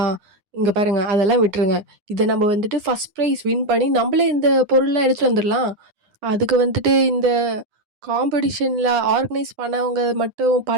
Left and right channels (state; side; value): late; left; 9.8 ms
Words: இங்க பாருங்க அதெல்லாம் விட்டுருங்க. இத நம்ம வந்துட்டு ஃபர்ஸ்ட் பிரைஸ் வின் பண்ணி நம்பளே இந்த பொருள்லாம் எடுத்துட்டு வந்துரலாம். அதுக்கு வந்துட்டு இந்த காம்படிஷன்ல ஆர்கனைஸ் பண்ணவங்க மட்டும்